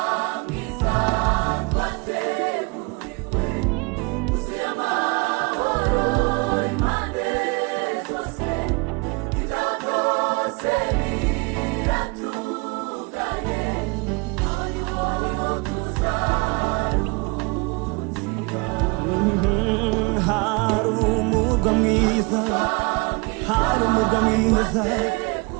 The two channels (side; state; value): left; quieter; 29.6 dB